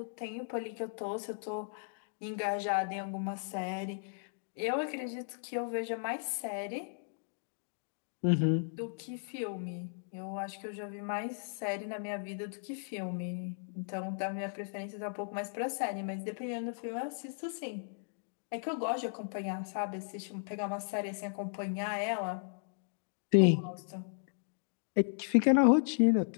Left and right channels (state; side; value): silent; right; digital silence